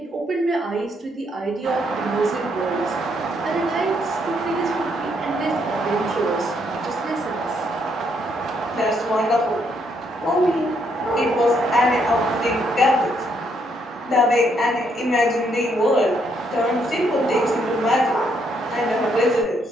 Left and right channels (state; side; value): normal; both; correlation 0.73